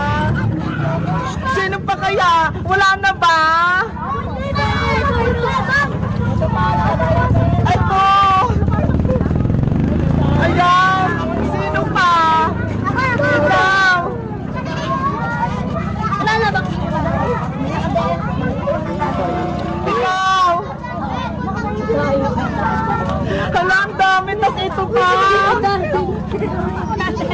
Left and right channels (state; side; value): identical; both; correlation 1.00